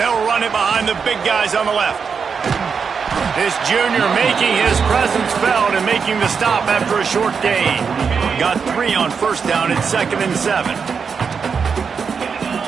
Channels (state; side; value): quieter; left; 5.9 dB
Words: run it behind the big guys on the left. This junior making his presence felt and making the stop after a short gain. Got 3 on first down at 2nd and 7.